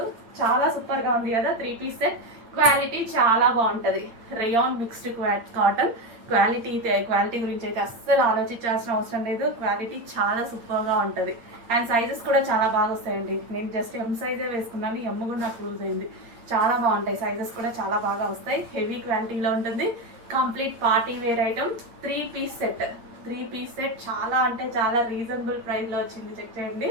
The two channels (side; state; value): left; late; 8.9 ms